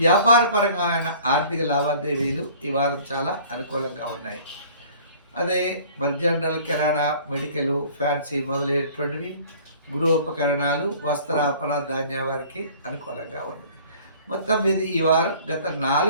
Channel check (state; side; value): inverted; both; correlation -0.50